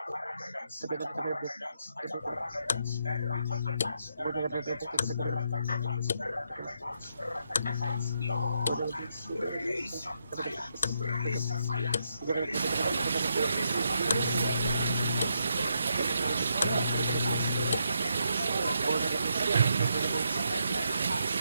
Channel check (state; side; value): inverted; both; correlation -0.79